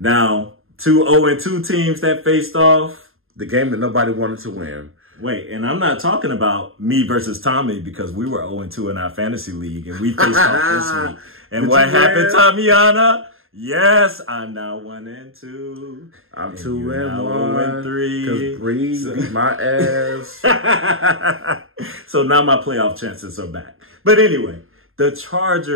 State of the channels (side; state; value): left; late; 0.61 ms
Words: Now, 2 0-2 teams that faced off. The game that nobody wanted to win. Wait, and I'm not talking about me versus Tommy because we were 0-2 in our fantasy league and we faced off this week. And what happened, Tamiana? Yes, I'm now 1-2. I'm 2-1. 3. Because Bree beat my ass. So now my playoff chances are back. But anyway, the